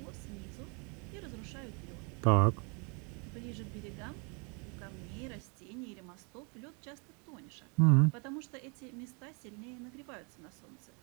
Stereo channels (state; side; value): quieter; left; 34.3 dB